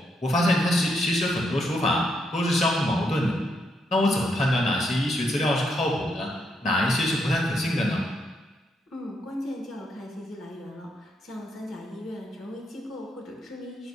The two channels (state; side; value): normal; both; correlation 0.78